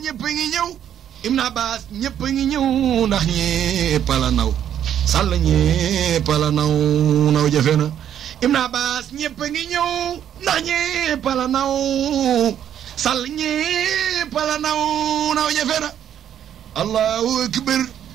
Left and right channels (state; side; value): quieter; left; 9.9 dB